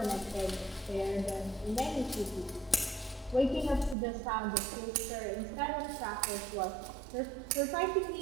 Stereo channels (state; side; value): drops out; left; at 4.0 s